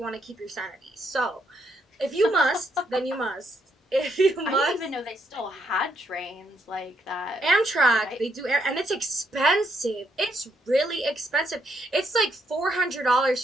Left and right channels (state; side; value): normal; both; correlation 0.75